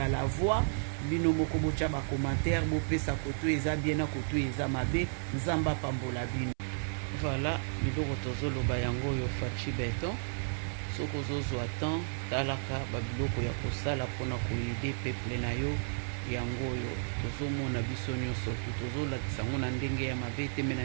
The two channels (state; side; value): silent; left; 56 dB below the other